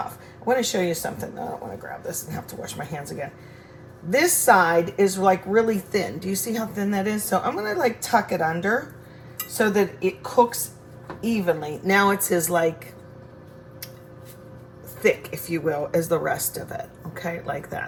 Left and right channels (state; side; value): identical; both; correlation 1.00